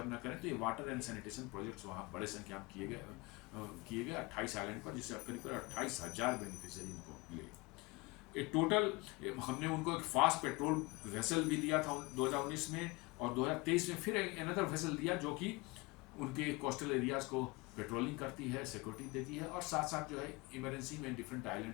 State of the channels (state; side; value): quieter; right; 24.9 dB